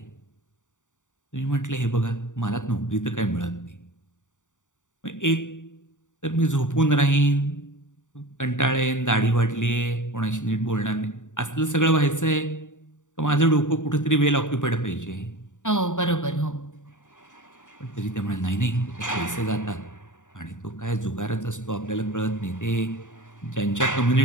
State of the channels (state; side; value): late; right; 0.86 ms